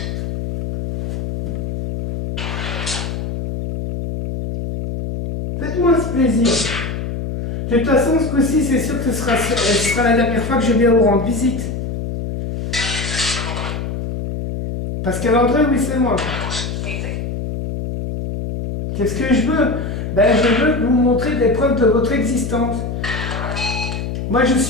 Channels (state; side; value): noise; left; hum, 4 dB below the sound